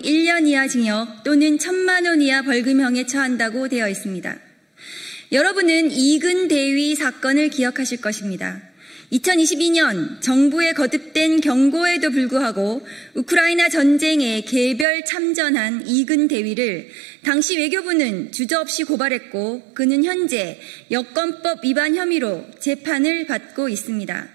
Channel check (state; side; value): drops out; left; at 14.9 s